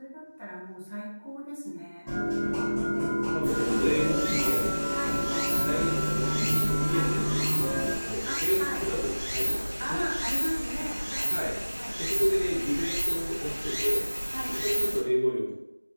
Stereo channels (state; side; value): inverted; both; correlation -1.00